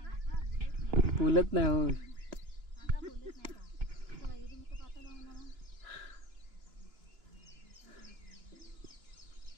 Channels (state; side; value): late; left; 2.9 ms